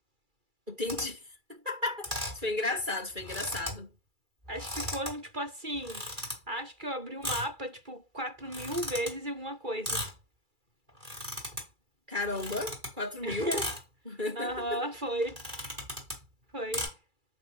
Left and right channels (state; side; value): late; left; 2.3 ms